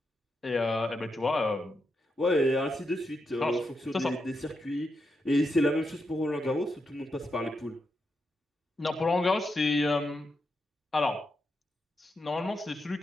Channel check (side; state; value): both; normal; correlation 0.84